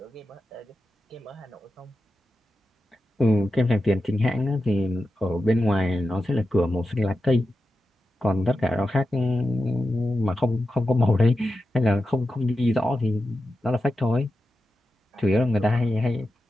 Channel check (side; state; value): both; normal; correlation 0.91